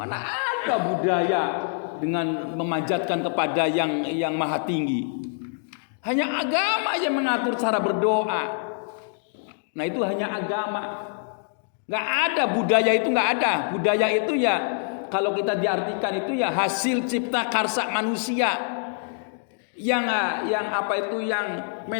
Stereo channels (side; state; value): right; silent; digital silence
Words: ada budaya dengan memanjatkan kepada yang maha tinggi. Hanya agama yang mengatur cara berdoa. Nah itu hanya agama. Gak ada budaya itu, gak ada. Budaya itu ya kalau kita diartikan itu ya hasil cipta karsa manusia. Yang apa itu yang